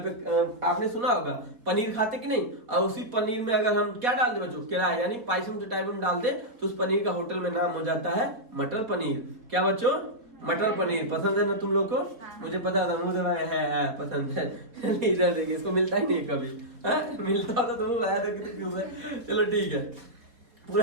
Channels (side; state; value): left; late; 4.2 ms